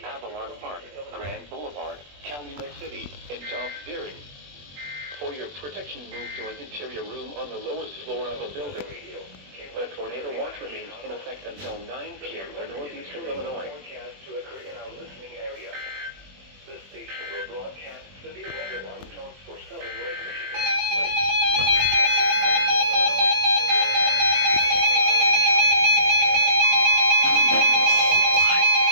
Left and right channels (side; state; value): left; late; 21 ms